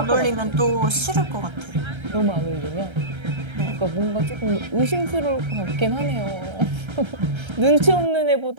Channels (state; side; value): late; left; 1.3 ms